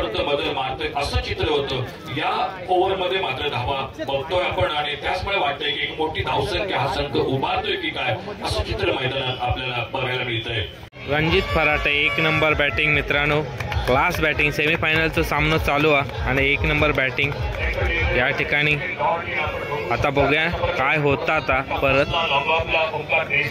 बदल मारतोय असं चित्र होतं। या ओव्हरमध्ये मात्र धावा बघतोय आपण आणि त्याचमुळे वाटतंय की एक मोठी धावसंख्या हा संघ उभारतोय की काय असं चित्र मैदानात आपल्याला बघायला मिळतंय। रणजित फराटे 1 नंबर बॅटिंग मित्रांनो, क्लास बॅटिंग। सेमीफायनलचा सामना चालू आहे आणि 1 नंबर बॅटिंग या ठिकाणी। आता बघूया काय होतं आता परत।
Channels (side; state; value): both; identical; correlation 1.00